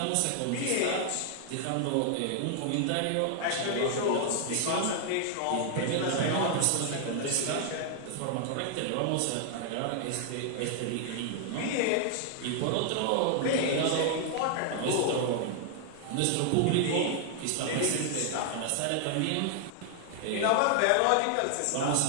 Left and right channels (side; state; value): both; different; correlation 0.00